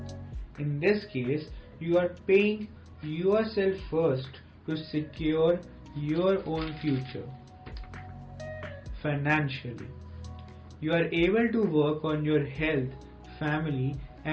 In this case, you are paying yourself first to secure your own future. Financially, you are able to work on your health, family,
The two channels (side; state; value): both; identical; correlation 1.00